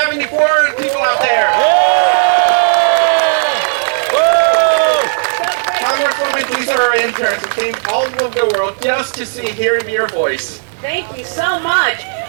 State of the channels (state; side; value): silent; left; digital silence